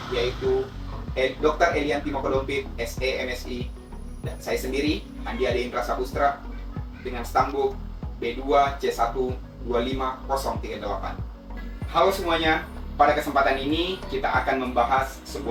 yaitu Dr. Elian Timokodompit, SE MSI, dan saya sendiri, Andi Ade Indra Sapustra, dengan stambuk B2 C1 25038. Halo semuanya, pada kesempatan ini kita akan membahas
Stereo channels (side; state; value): both; identical; correlation 1.00